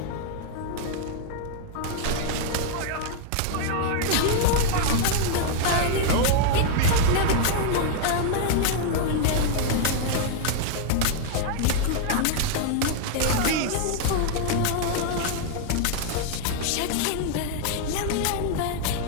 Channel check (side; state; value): both; different; correlation 0.00